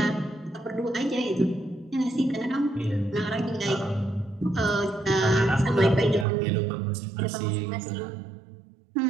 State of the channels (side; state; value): left; drops out; at 6.2 s